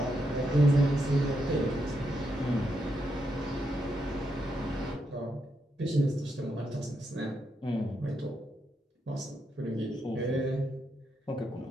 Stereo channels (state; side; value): normal; both; correlation 0.81